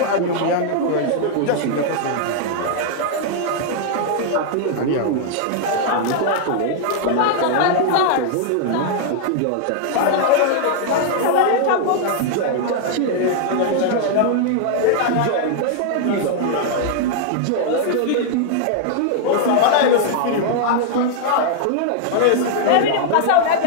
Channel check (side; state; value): both; different; correlation -0.01